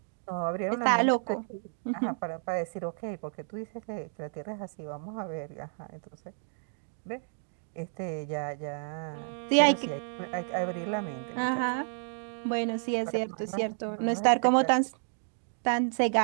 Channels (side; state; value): left; silent; 57 dB below the other